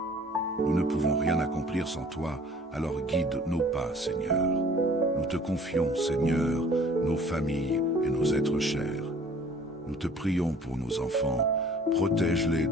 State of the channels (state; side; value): normal; both; correlation 0.51